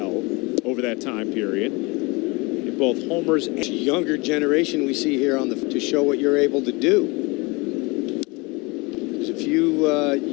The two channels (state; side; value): quieter; right; 26.3 dB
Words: over that time period, in both homers and... Younger generation we see here on to show what you're able to do. Because if